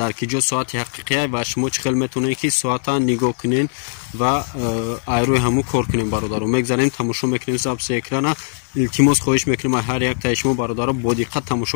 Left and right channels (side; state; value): right; silent; digital silence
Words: киҷо соати ҳақиқия ва шумо чӣ хел метавонед ки соата нигоҳ кунед ва айрӯи ҳамун кор кунем. бародаро мегзарем тамошо мекунем записи экрана. илтимос хоҳиш мекунем ҳар як таи шумо бародаро бо диққат